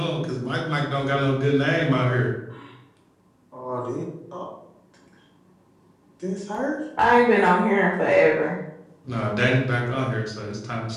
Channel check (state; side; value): identical; both; correlation 1.00